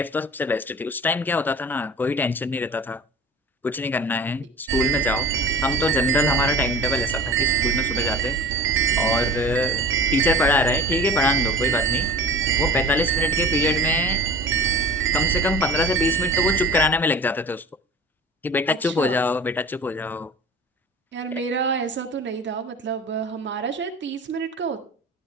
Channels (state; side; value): normal; both; correlation 0.38